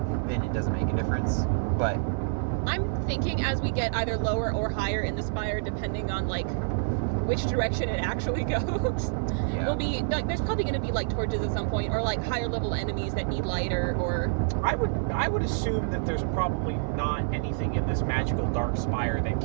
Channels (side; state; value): left; silent; digital silence